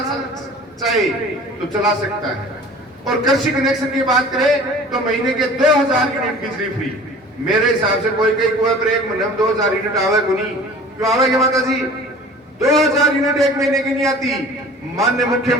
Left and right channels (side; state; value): both; normal; correlation 0.44